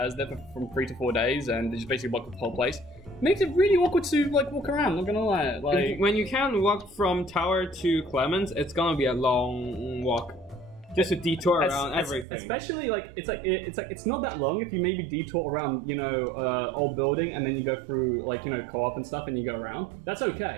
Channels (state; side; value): drops out; left; at 12.2 s